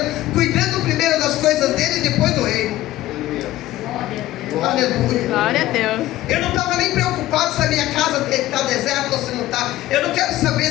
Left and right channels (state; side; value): quieter; right; 15.4 dB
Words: cuidando primeiro das coisas dele e depois do reino. Aleluia. Glória a Deus. Eu não estava nem preocupado se a minha casa está deserta ou se não está. Eu não quero saber